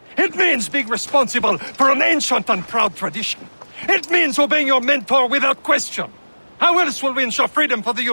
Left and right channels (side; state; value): both; inverted; correlation -1.00